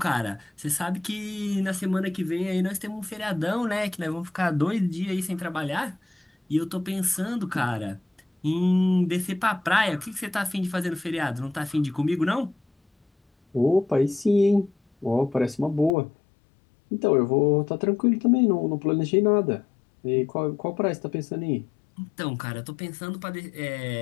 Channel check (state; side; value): drops out; right; at 16.0 s